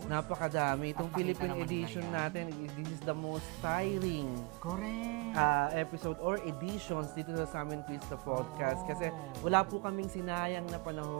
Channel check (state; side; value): quieter; left; 27.6 dB